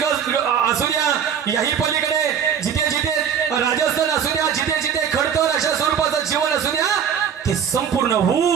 असू द्या, याही पलीकडे जिथे जिथे राजस्थान असू द्या, जिथे जिथे खडतर अशा स्वरूपाचं जीवन असू द्या, ते संपूर्ण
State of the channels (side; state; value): left; quieter; 8.1 dB